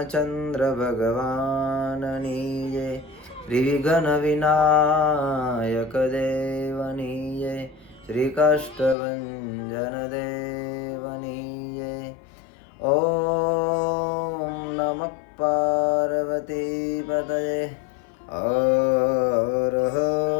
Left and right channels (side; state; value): right; drops out; at 9.0 s